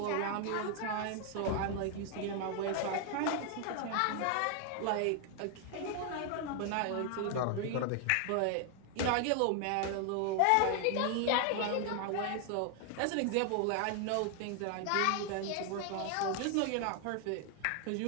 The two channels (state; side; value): different; both; correlation 0.00